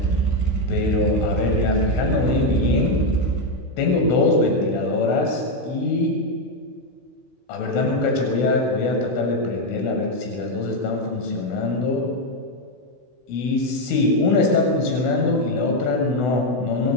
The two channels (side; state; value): right; late; 16 ms